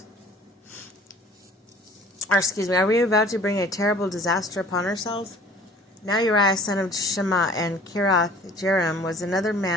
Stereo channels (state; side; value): normal; both; correlation 0.50